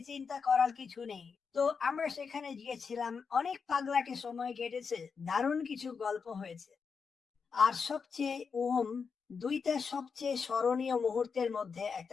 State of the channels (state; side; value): quieter; right; 5.7 dB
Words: চিন্তা করার কিছু নেই। তো আমরা সেখানে গিয়েছিলাম, অনেক পাগলাটে সময় কেটেছে, দারুণ কিছু গল্প হয়েছে। আর সবচেয়ে দুইটা সবচেয়ে স্মরণীয় মুহূর্তের মধ্যে